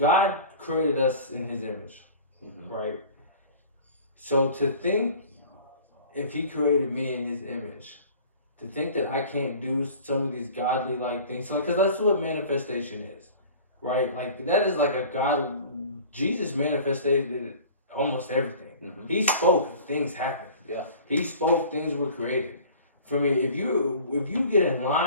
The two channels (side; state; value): both; inverted; correlation -0.44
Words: created us in His image, right? So to think, if He created me in His image, to think that I can't do some of these godly like things, so because that's what manifestation is, right? Like that is like a God. Jesus manifested almost everything. He spoke, things happened. Yeah. He spoke, things were created. For me, if you get in